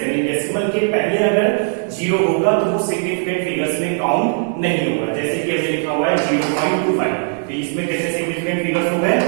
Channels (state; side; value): silent; left; 56 dB below the other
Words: यानी डेसिमल के पहले अगर जीरो होगा तो वो सिग्निफिकेंट फिगर्स में काउंट नहीं होगा। जैसे कि हमने लिखा हुआ है 0.25, तो इसमें कितने सिग्निफिकेंट फिगर्स हो गए,